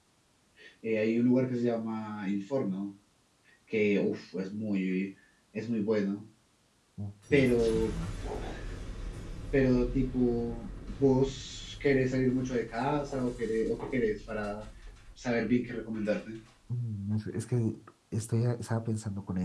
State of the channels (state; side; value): identical; both; correlation 1.00